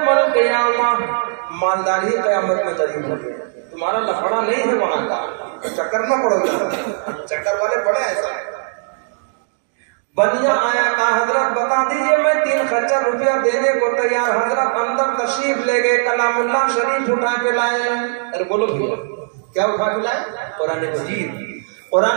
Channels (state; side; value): silent; left; digital silence